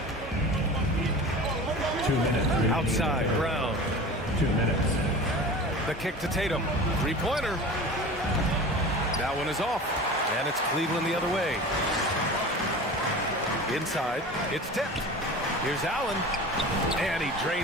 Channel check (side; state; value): both; normal; correlation 0.35